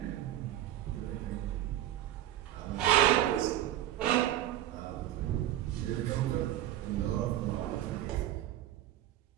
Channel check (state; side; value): quieter; left; 13.1 dB